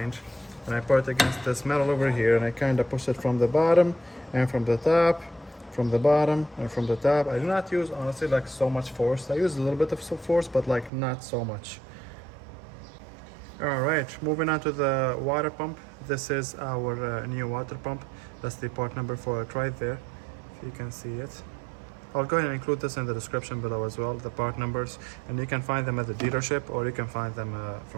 and I put it against this metal over here, and I kind of push it from the bottom and from the top, from the bottom and from the top. I do not use, honestly, like so much force. I use a little bit of force, but like not so much. All right, moving on to the water pump. This is our new water pump. That's the part number for it right there, if you can see it. I'll go ahead and include this in the description below as well, the part numbers, and you can find them at the dealership, or you can find them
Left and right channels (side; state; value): left; drops out; at 10.9 s